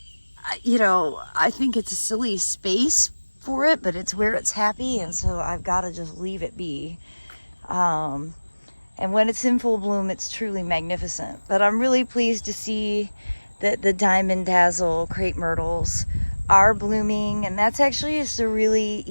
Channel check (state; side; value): inverted; both; correlation -1.00